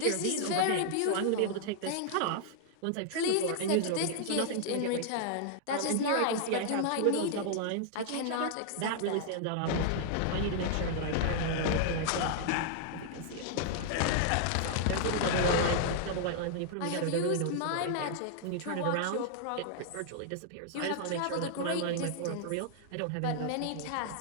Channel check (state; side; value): different; both; correlation -0.01